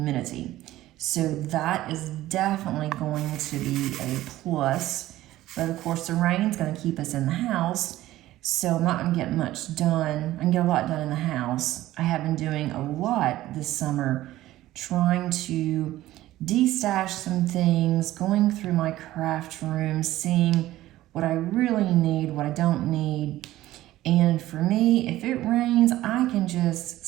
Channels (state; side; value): quieter; left; 15.4 dB